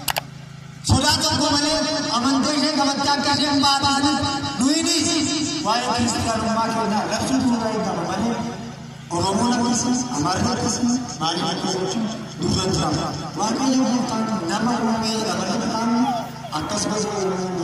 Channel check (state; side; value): identical; both; correlation 1.00